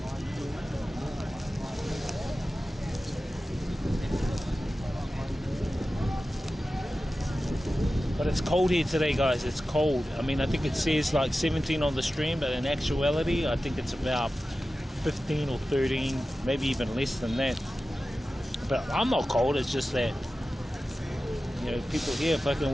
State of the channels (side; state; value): both; normal; correlation 0.94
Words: But it's cold here today, guys. It's cold. I mean, I think it says like 17 on the stream, but in actuality, I think it's about 15 or 13, maybe even less than that. But I'm not cold. It's just that, you know, people here fucking